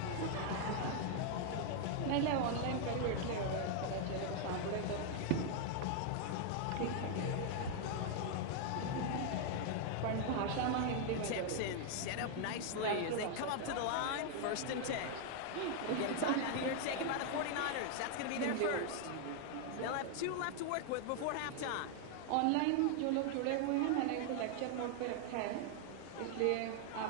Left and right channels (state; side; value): different; both; correlation 0.00